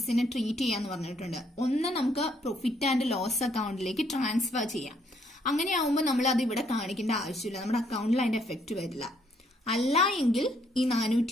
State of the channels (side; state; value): both; normal; correlation 0.69